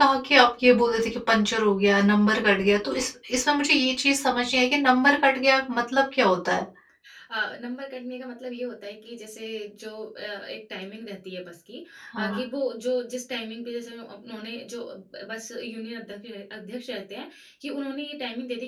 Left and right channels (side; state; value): both; identical; correlation 1.00